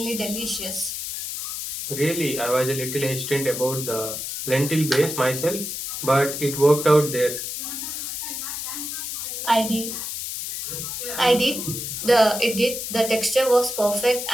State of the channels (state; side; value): noise; left; hiss, 5 dB below the sound